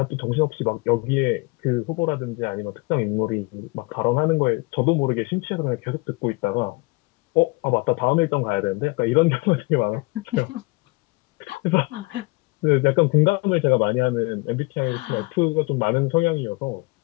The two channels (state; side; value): quieter; right; 25.6 dB